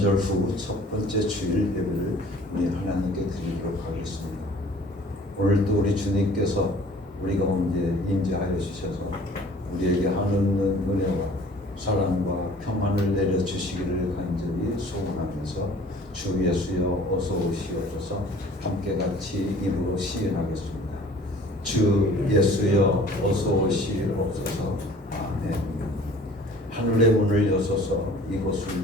후 첫 번째 주일 예배를 우리 하나님께 드리도록 하겠습니다. 오늘도 우리 주님께서 우리 가운데 임재하여 주셔서 우리에게 하는 은혜와 사랑과 평안을 내려주시기를 간절히 소원하면서 주 예수여 어서 오시옵소서 함께 같이 입으로 시인하겠습니다. 주 예수여 어서 오시옵소서. 아멘. 하늘의 문을 여셔서 이곳을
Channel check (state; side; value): normal; both; correlation 0.50